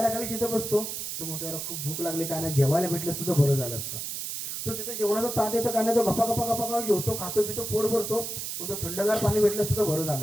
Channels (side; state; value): right; noise; hiss, 5 dB below the sound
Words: तिथं बसतो. तो म्हणतो याला खूप भूक लागली, काय नाही, जेवायला भेटलं असतं तर बरं झालं असतं. तो तिथं जेवणाचं ताट येतं, काय नाही, तो गप्पा गप्पा गप्पा जेवतो, खातो पितो, पोट भरतो. तो थंडगार पाणी भेटलं असतं तर बरं